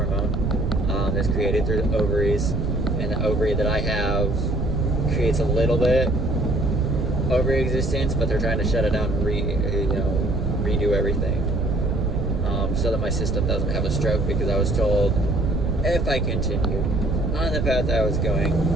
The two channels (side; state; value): right; noise; rumble, 2 dB below the sound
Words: that's created through the ovaries, and the ovary that I have creates a little bit ovary existence, but they're trying to shut it down and redo everything, so that my system doesn't have a stroke, because I was told if I continued on the path I was going,